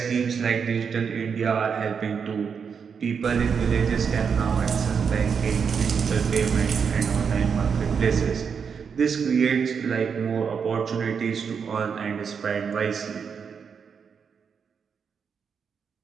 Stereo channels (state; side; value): quieter; left; 6.4 dB